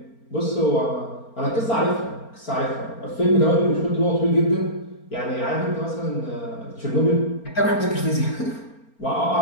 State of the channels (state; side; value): late; right; 4.4 ms